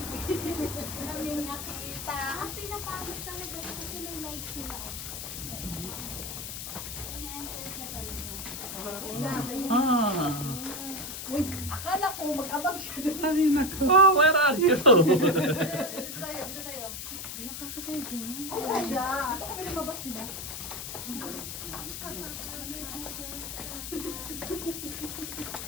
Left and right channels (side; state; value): left; noise; hiss, 7 dB below the sound